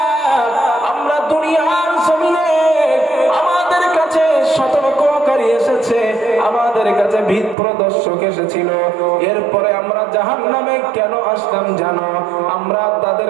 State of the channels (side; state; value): left; drops out; at 7.6 s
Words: আমরা দুনিয়ার জমিনে আমাদের কাছে সতর্ককারী এসেছে, আমাদের কাছে ভীত প্রদর্শক এসেছিল, এরপরে আমরা জাহান্নামে কেন আসলাম জানো? আমরা তাদের